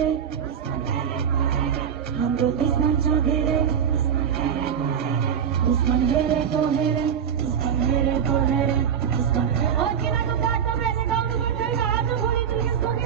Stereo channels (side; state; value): left; quieter; 8.1 dB